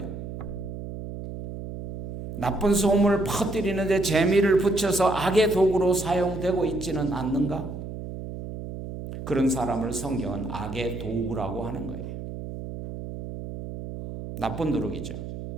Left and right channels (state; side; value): noise; right; hum, 8 dB below the sound